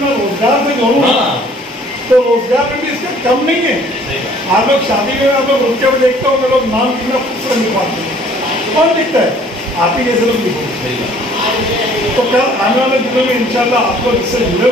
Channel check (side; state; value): both; normal; correlation 0.56